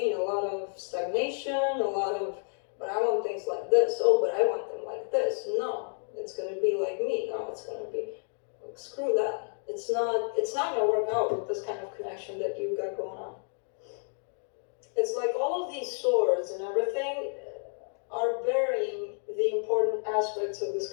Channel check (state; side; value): silent; right; 58 dB below the other